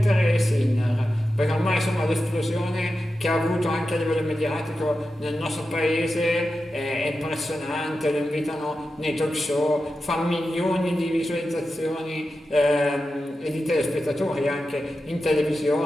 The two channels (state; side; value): normal; both; correlation 0.91